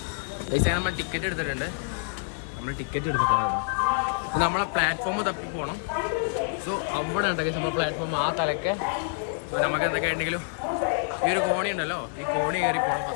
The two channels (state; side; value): silent; right; 60 dB below the other